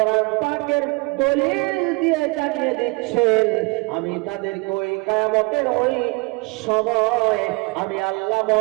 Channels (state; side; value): quieter; left; 27.6 dB